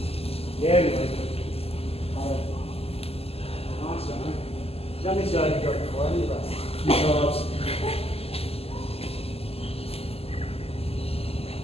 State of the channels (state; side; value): late; right; 0.29 ms